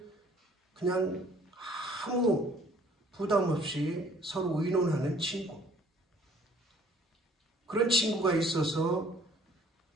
그냥 아무 부담 없이 서로 의논하는 친구. 그런 친구가 있어서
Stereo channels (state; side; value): normal; both; correlation 0.57